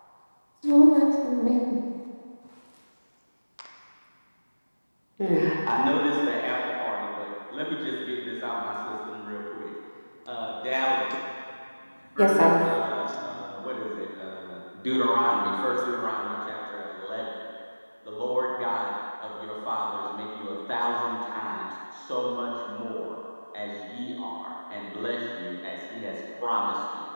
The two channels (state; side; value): inverted; both; correlation -1.00